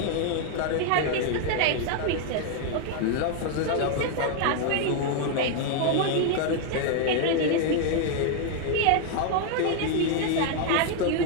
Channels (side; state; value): both; different; correlation 0.00